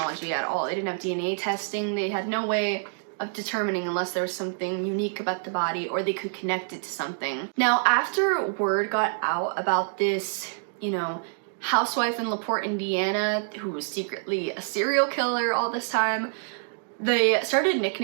at all. They didn't have DNA testing. They had no way of determining unless there was something unique about the body or they could connect it to something. Now, after word got out about this, you know, housewife in LaPorte, Indiana, who was secretly a serial killer all this time, they started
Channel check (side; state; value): left; silent; digital silence